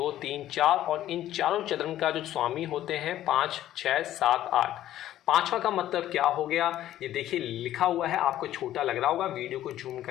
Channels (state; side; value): quieter; right; 12.9 dB